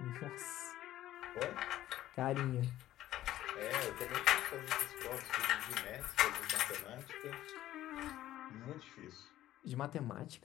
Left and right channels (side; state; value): right; quieter; 13.8 dB